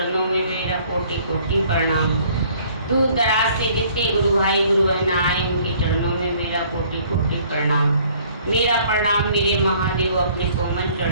में मेरा कोटि कोटि प्रणाम। दूर दराज से जितने गुरु भाई गुरु बहन आए उनके चरणों में मेरा कोटि कोटि प्रणाम। मेरा प्रणाम मेरे महादेव अपने कोमल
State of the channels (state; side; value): inverted; both; correlation -0.58